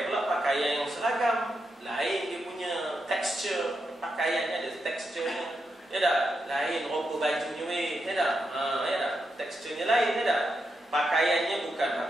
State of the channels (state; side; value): normal; both; correlation 0.85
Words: pula pakaian yang seragam. Lain dia punya tekstur pakaiannya, ada teksturnya. Lain roba bajunya teksturnya lain. Pakaiannya bukan